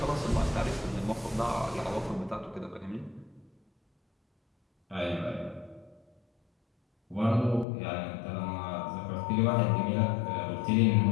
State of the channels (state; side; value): drops out; right; at 7.7 s